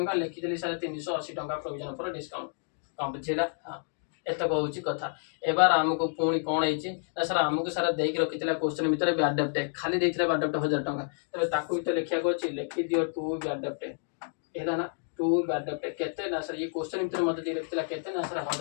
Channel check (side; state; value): right; silent; digital silence